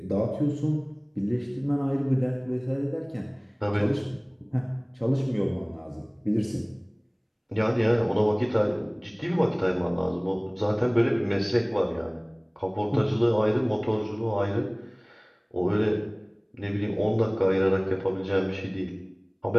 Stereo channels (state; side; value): identical; both; correlation 1.00